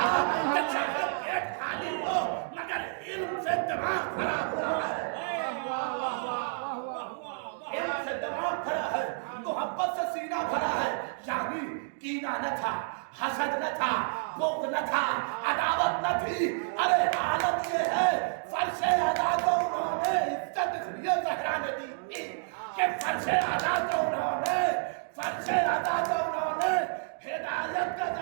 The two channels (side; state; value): left; silent; digital silence